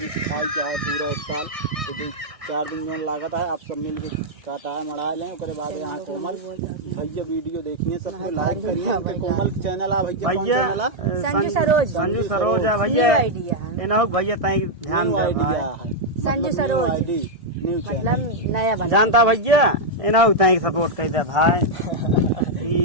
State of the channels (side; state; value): left; late; 1.6 ms